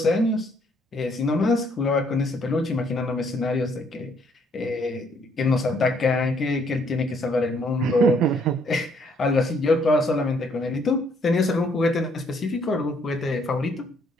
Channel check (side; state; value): both; normal; correlation 0.67